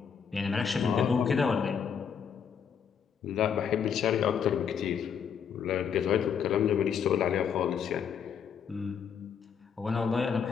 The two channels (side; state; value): right; quieter; 7.3 dB